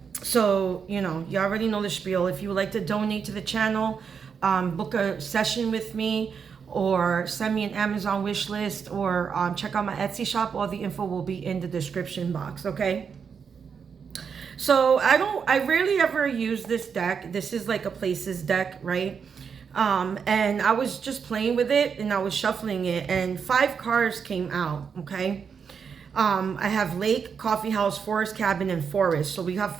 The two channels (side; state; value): left; quieter; 6.5 dB